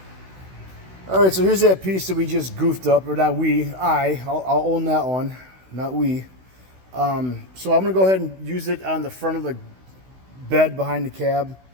All right, so here's that piece that we just goofed up, or not we. I'll own that one, not we. So I'm gonna go ahead and use it on the front of the bed behind the cab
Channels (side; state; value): left; late; 16 ms